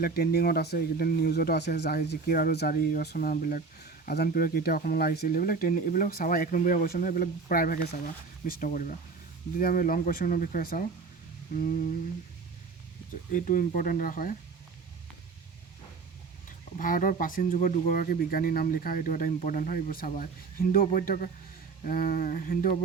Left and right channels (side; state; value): left; quieter; 4.7 dB